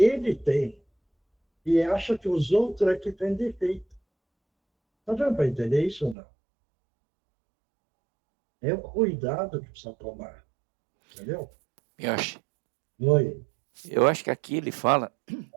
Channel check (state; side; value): drops out; left; at 6.2 s